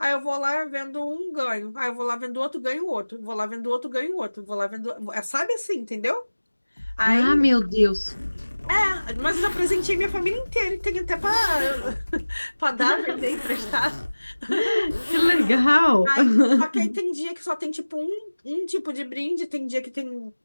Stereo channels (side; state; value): both; inverted; correlation -1.00